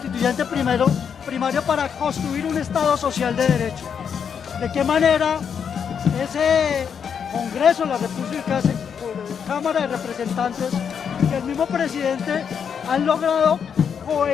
primario para construir un Estado social de derecho. ¿De qué manera ese Congreso de la República, Cámara de Representantes y el mismo presidente han logrado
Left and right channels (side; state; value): right; quieter; 7.2 dB